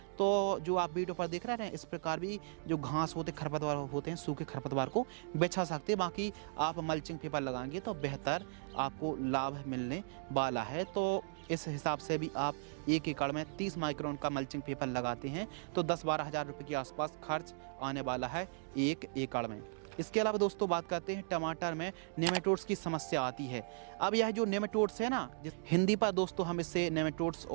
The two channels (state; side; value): silent; left; digital silence